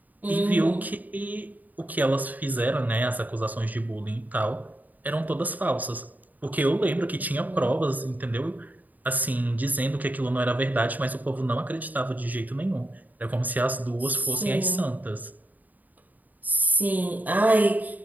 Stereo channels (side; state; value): left; late; 0.081 ms